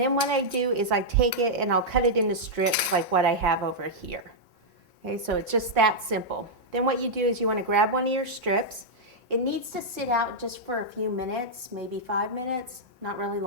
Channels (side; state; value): both; normal; correlation -0.06